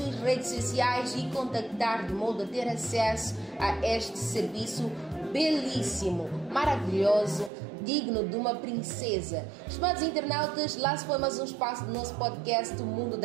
redes sociais e contactar de modo a ter acesso a este serviço belíssimo, maravilhoso, digno de uma princesa. Estimados internautas, lá se foi mais um espaço do nosso podcast O Mundo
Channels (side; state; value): left; drops out; at 7.5 s